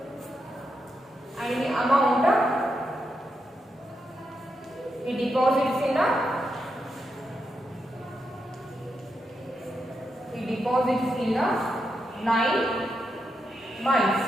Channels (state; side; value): normal; both; correlation 0.84